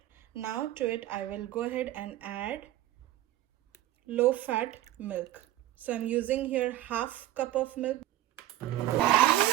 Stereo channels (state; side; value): quieter; left; 14.1 dB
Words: Now to it I will go ahead and add low fat milk. So I'm using here half cup of milk.